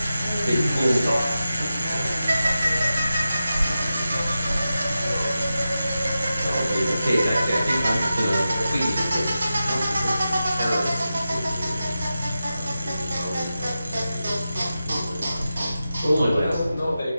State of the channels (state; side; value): inverted; both; correlation -0.92